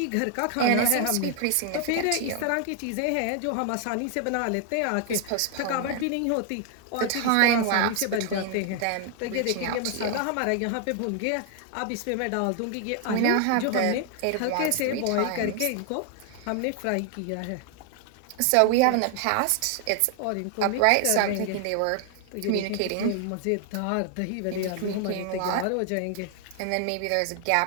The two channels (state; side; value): different; both; correlation 0.00